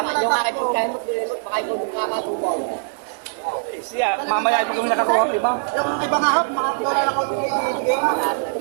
yung aking pagkain mo, dilimot, baka ikaw yung kakatubaw. Eh, siya, mamaya pag kung nakakuha ang iba. Yung iba nga hap, mga dola na kaunti bigay mo.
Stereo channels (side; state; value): left; silent; digital silence